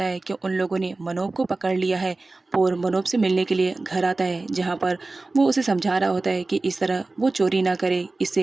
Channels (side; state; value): left; quieter; 3.3 dB